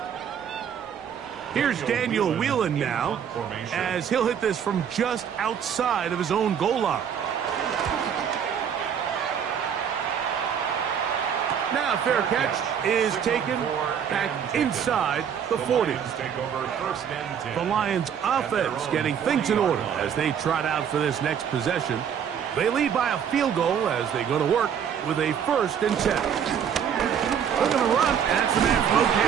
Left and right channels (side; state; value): left; quieter; 8.1 dB